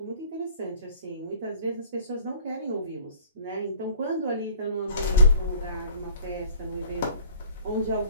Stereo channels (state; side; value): inverted; both; correlation -0.52